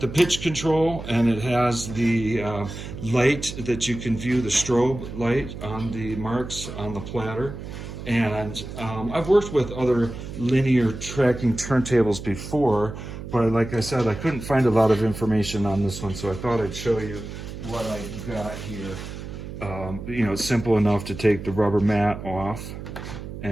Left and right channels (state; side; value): noise; right; hum, 10 dB below the sound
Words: the pitch control, and it has the light that you can view, the strobe light on the marks on the platter. And I've worked with other linear tracking turntables before, but like I said, I couldn't find a lot of information on this one, so I thought I'd show you what I've got here. You know, it's simple enough to take the rubber mat off,